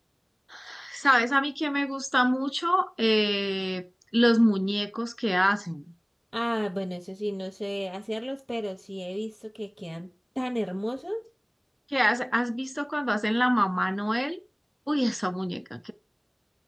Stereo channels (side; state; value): both; identical; correlation 1.00